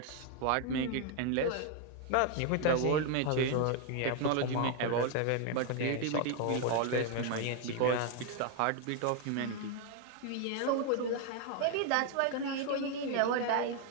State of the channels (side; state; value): both; different; correlation 0.01